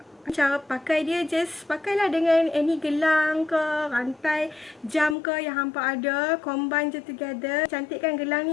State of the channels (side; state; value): right; drops out; at 5.2 s